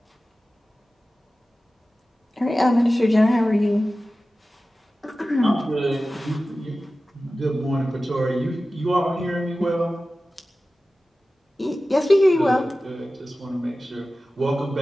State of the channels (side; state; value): both; normal; correlation 0.95